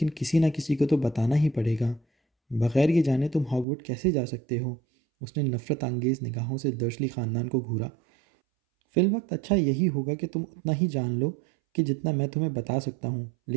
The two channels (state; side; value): drops out; left; at 3.7 s